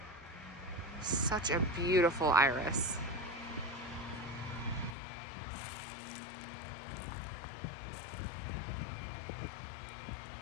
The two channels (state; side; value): drops out; right; at 5.0 s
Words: Such a beautiful iris.